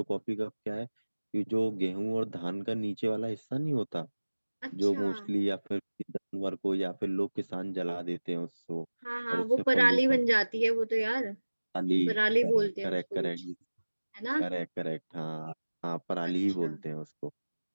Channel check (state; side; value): inverted; both; correlation -1.00